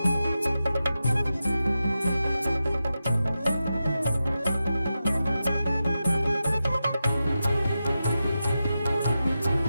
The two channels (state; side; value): inverted; both; correlation -0.91